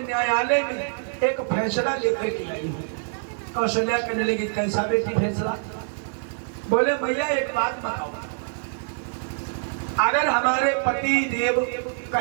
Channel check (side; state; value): left; silent; digital silence